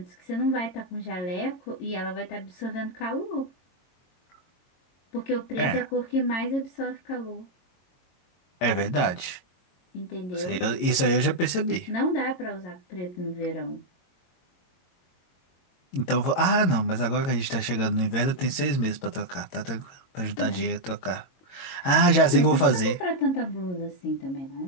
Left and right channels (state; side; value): late; right; 22 ms